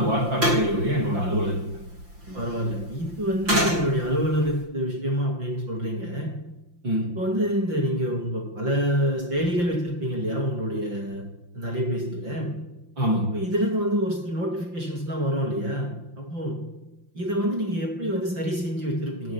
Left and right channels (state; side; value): late; left; 5.8 ms